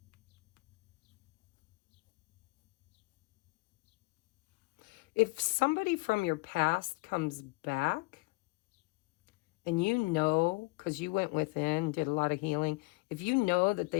If somebody from your past comes back, and because you went within, did a lot of healing, if you know that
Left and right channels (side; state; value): right; quieter; 25.9 dB